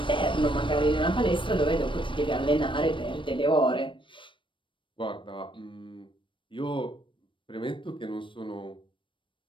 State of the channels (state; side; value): late; right; 0.24 ms